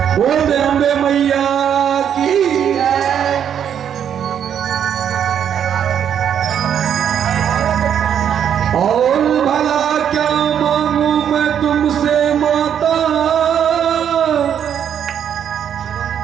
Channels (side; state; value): left; quieter; 8.9 dB